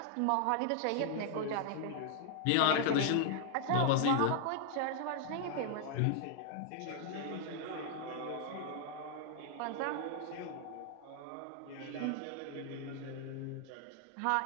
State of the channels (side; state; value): both; different; correlation 0.00